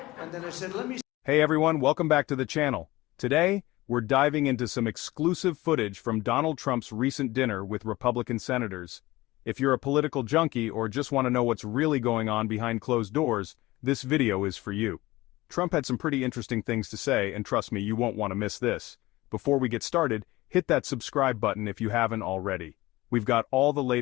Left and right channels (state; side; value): quieter; right; 19.0 dB